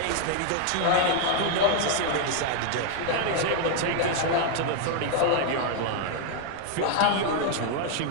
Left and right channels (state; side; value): different; both; correlation 0.00